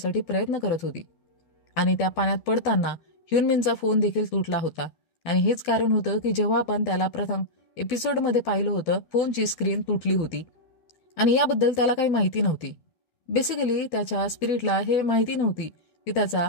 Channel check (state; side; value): late; right; 12 ms